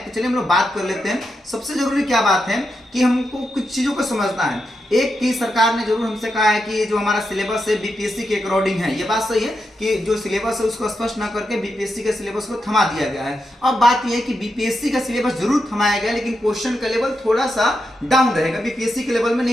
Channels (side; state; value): both; normal; correlation 0.86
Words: तो चलिए हम लोग बात कर लेते हैं। सबसे जरूरी क्या बात है कि हमको कुछ चीजों को समझना है। एक की सरकार ने जरूर हमसे कहा है कि जो हमारा सिलेबस है बीपीएससी के अकॉर्डिंग है। ये बात सही है कि जो सिलेबस है उसको स्पष्ट ना करके बीपीएससी के सिलेबस को थमा दिया गया है। अब बात यह है कि बीपीएससी का सिलेबस जरूर थमाया गया, लेकिन क्वेश्चन का लेवल थोड़ा सा डाउन रहेगा, बीपीएससी के लेवल में